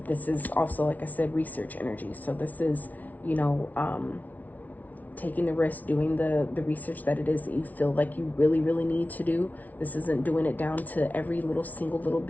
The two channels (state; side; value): late; right; 0.075 ms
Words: This is also, like I said, research energy. So this is, you know, taking the risk, doing the research that it is that you feel like you really, really need to do. This isn't doing it down to every single little